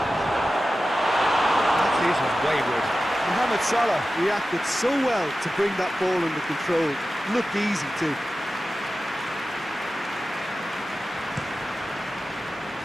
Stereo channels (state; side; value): normal; both; correlation 0.94